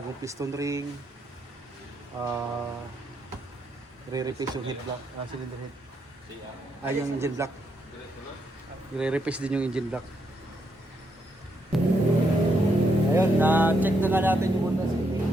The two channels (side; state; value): both; normal; correlation 0.77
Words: piston ring. Re-replace yung head block, cylinder head. Yung engine block. I-replace din yung engine block. Ayun, na-check na nga natin yung Honda City.